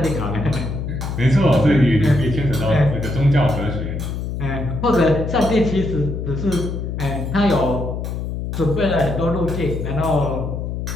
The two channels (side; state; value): left; noise; hum, 4 dB below the sound